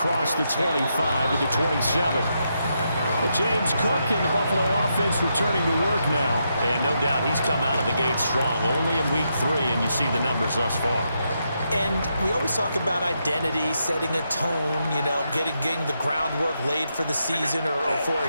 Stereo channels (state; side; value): inverted; both; correlation -0.82